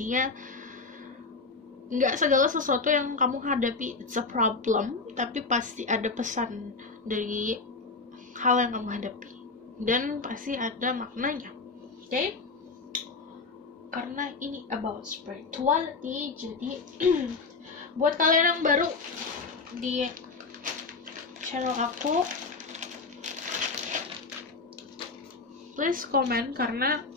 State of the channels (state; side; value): quieter; right; 4.1 dB